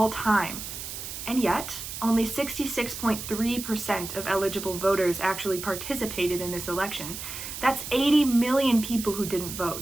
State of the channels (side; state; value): right; noise; hiss, 8 dB below the sound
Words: time. And yet, only 66.3% of eligible voters actually participated in this election. That's 80 million people who didn't